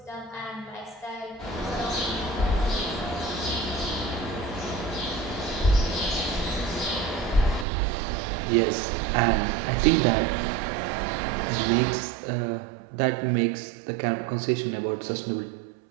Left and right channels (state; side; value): drops out; left; at 7.7 s